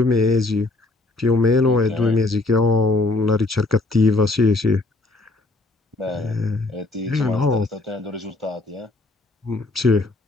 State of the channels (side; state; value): right; quieter; 3.0 dB